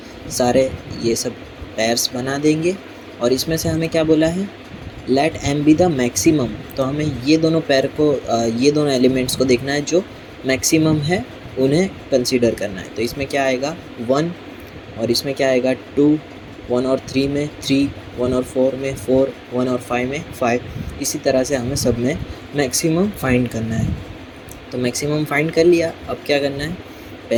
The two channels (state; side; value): identical; both; correlation 1.00